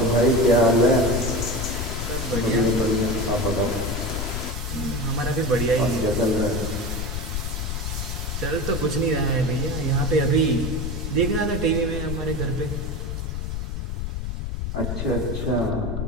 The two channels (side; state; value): left; noise; rumble, 3 dB below the sound